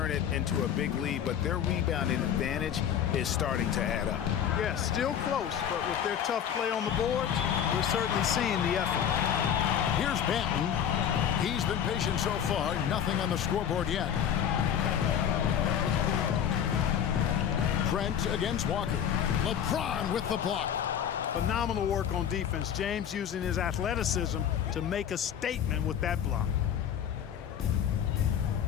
it into a big lead, but their rebounding advantage is starting to add up. Yeah, still close, but with their tough play on the boards, we're certainly seeing the effort. Here's Banton. He's been patient so far, nothing on the scoreboard yet. Trent against Walker. LeBron with the block. Phenomenal work on defense. James using his athleticism to make a statement with that block.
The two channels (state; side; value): quieter; right; 9.0 dB